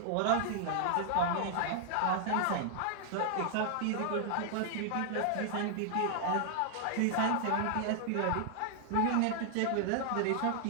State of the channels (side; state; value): both; different; correlation 0.00